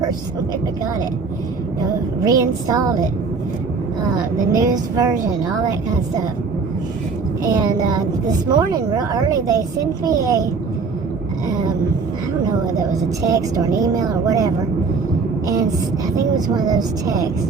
when I got it. Reinstalled it. The newest version, all that kind of stuff. And this morning, real early, they sent me I don't know whether it was a text or an email or whatever, and I think it was one of those texts,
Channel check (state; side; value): quieter; left; 4.7 dB